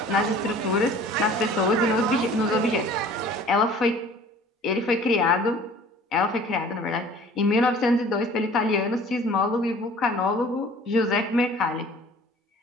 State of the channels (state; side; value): normal; both; correlation 0.48